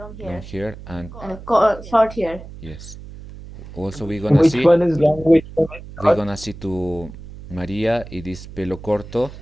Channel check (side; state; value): right; noise; hum, 15 dB below the sound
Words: long hair, hair and and short hair. yes. Also we're gonna Which see one is long? Which one is we're short? gonna see to Maria it is pelo corto.